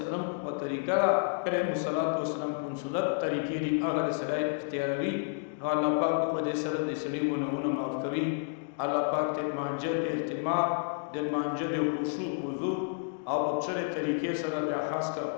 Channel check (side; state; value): right; silent; digital silence